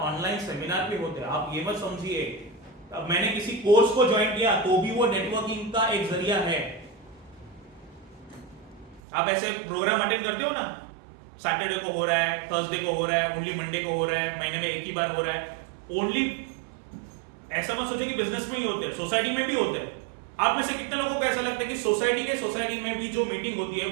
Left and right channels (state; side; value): drops out; left; at 9.0 s